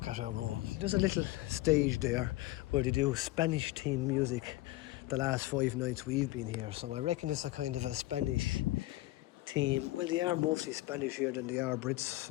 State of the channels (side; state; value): right; quieter; 18.3 dB